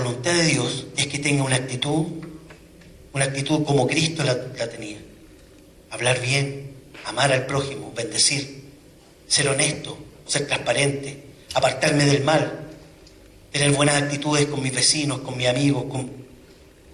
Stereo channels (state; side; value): identical; both; correlation 1.00